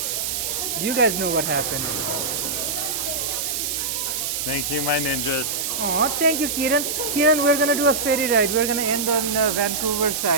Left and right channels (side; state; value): right; noise; hiss, 1 dB below the sound